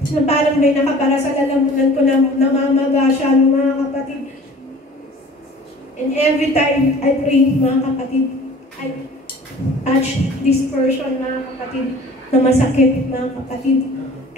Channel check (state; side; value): normal; both; correlation 0.46